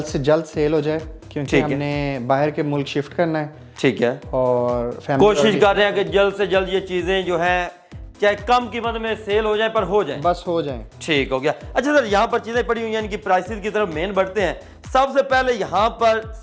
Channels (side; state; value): both; identical; correlation 1.00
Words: से जल्द सेल हो जाए, क्योंकि हमने बाहर के मुल्क शिफ्ट करना है। ठीक है, और कोशिश कर रहे हैं कि जल्द से जल्द ये चीज़ें जो हैं चाहे कम कीमत में सेल हो जाए पर हो जाए, बस हो जाए। ठीक हो गया। अच्छा सर, यहाँ पर चीज़ें पड़ी हुई हैं, इनकी प्राइसेस की तरफ मेन बढ़ते हैं। सबसे पहले यहाँ पर